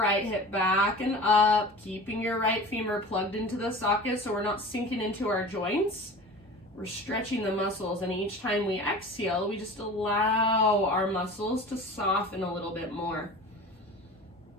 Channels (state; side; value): normal; both; correlation 0.37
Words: hip back and up, keeping your right femur plugged into the socket so we're not sinking into our joints. We're stretching the muscles, and each time we exhale, we just allow our muscles to soften a little bit more.